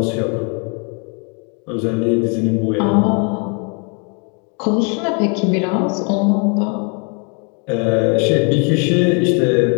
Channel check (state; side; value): quieter; right; 36.0 dB